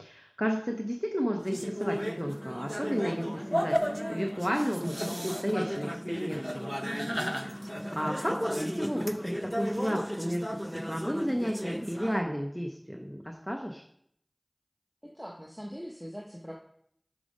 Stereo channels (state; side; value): identical; both; correlation 1.00